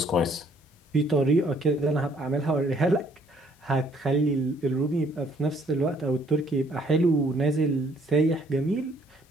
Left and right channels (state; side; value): normal; both; correlation 0.63